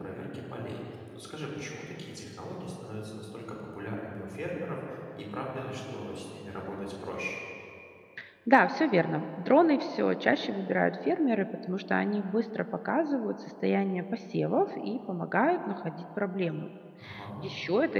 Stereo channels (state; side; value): identical; both; correlation 1.00